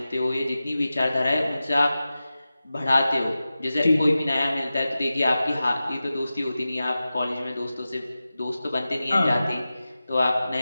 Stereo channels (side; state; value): both; inverted; correlation -0.95